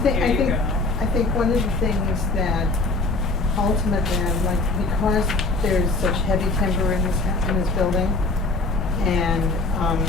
I think one of the things that ultimately I'd like, because there's such heavy timber in this building, and,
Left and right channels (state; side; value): quieter; right; 3.3 dB